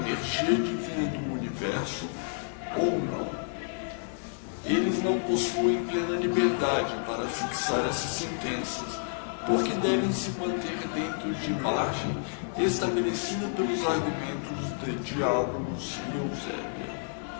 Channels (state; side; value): silent; right; digital silence